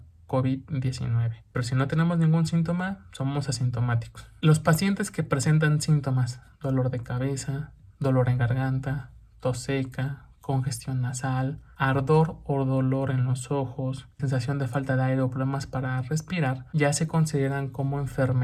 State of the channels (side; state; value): both; identical; correlation 1.00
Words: COVID-19. Pero si no tenemos ningún síntoma, somos asintomáticos. Los pacientes que presentan síntomas, dolor de cabeza, dolor en garganta, tos seca, congestión nasal, ardor o dolor en los ojos, sensación de falta de aire o problemas para respirar, ya se consideran como